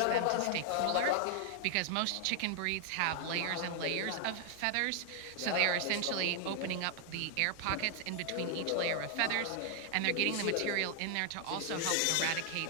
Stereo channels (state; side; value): different; both; correlation 0.00